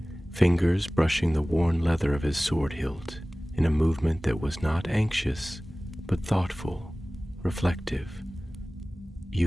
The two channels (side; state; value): both; normal; correlation 0.98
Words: fingers brushing the worn leather of his sword hilt in a movement that was not anxious, but thoughtful, reflective.